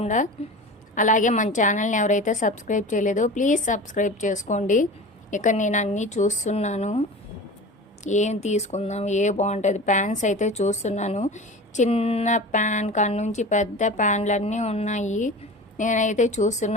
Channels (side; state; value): both; normal; correlation 0.34